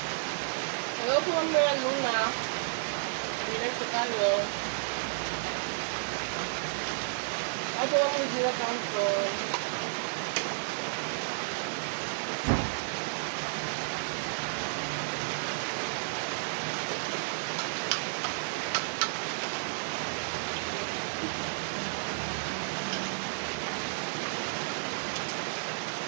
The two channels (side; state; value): left; silent; digital silence